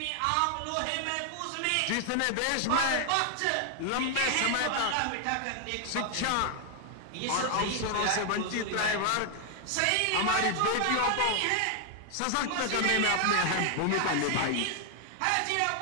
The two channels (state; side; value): different; both; correlation 0.00